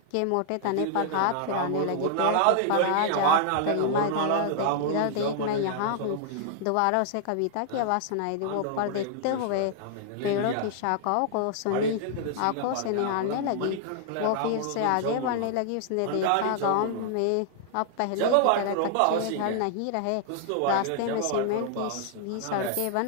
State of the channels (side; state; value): both; different; correlation -0.01